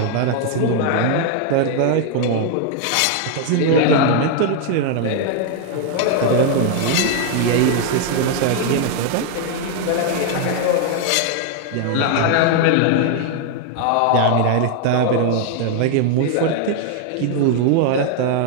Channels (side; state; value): both; different; correlation 0.00